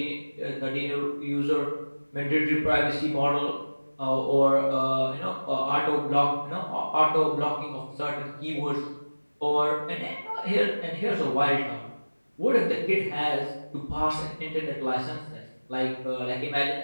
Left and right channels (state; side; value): inverted; both; correlation -1.00